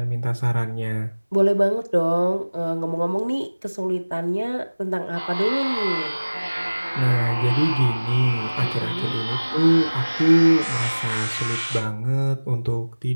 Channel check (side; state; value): both; inverted; correlation -1.00